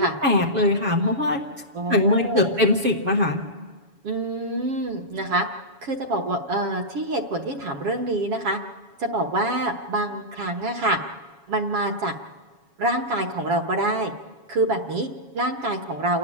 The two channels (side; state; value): left; late; 7.2 ms